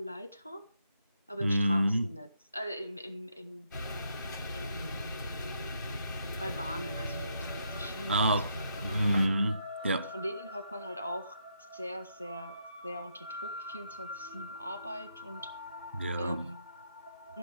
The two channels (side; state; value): both; inverted; correlation -0.77